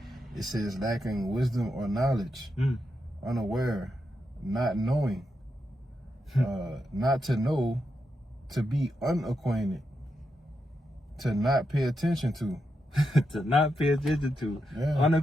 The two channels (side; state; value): both; normal; correlation 0.85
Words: it says lacking wisdom or knowledge, unaware, not knowing, not to know, to be unacquainted, to not pay attention to. To not pay attention to.